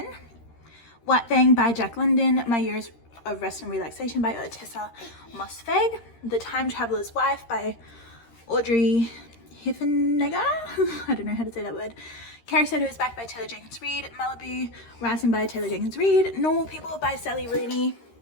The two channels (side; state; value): right; late; 13 ms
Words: White Fang by Jack London, My Years of Rest and Relaxation by Otessa Mosfeg, The Time Traveler's Wife by Audrey Hiffenegger, I don't know how to say that word, Carrie Soto Is Back by Taylor Jenkins Reid, Malibu Rising by Taylor Jenkins Reid, Normal People by Sally Rooney,